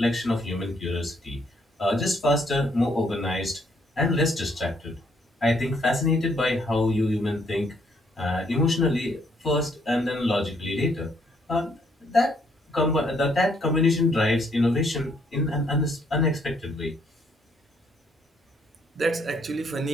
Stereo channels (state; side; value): normal; both; correlation 0.69